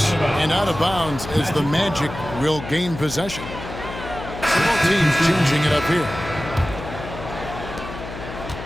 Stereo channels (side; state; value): left; noise; hum, 10 dB below the sound